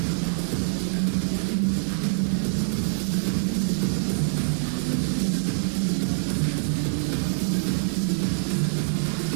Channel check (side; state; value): left; silent; digital silence